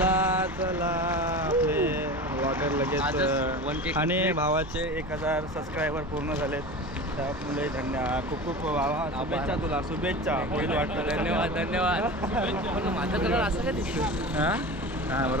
आपले व्लॉगर लगेच. आणि भावाचे 1000 सबस्क्रायबर पूर्ण झालेत, त्यामुळे धन्यवाद. खूप शुभेच्छा तुला. शुभेच्छा. होईल वाटतं. धन्यवाद. माझा कलर असं काय दिसतो? हां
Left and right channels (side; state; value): both; normal; correlation 0.31